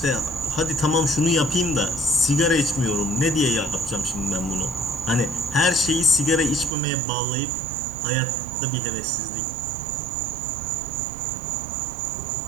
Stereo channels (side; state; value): left; drops out; at 6.8 s